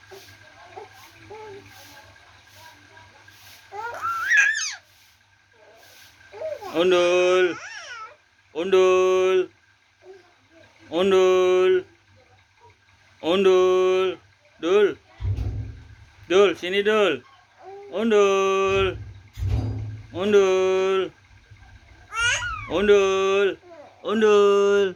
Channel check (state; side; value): identical; both; correlation 1.00